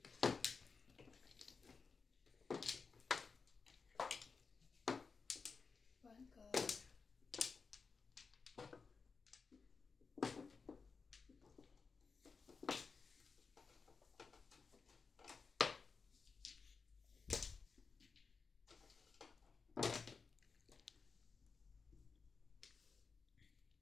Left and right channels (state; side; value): quieter; right; 4.9 dB